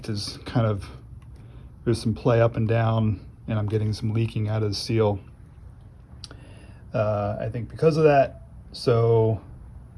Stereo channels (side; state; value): both; identical; correlation 1.00